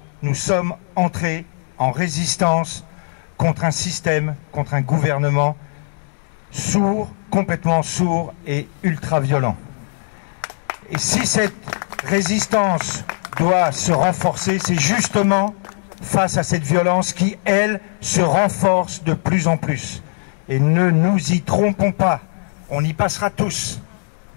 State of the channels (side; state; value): right; silent; 66 dB below the other